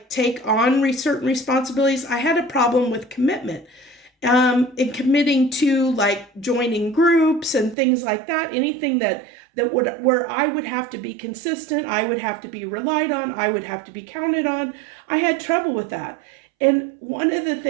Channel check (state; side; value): drops out; left; at 7.8 s